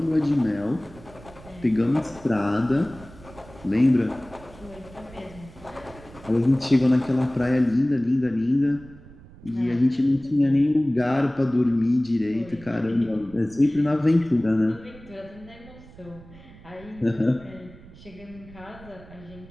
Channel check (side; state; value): right; noise; rumble, 20 dB below the sound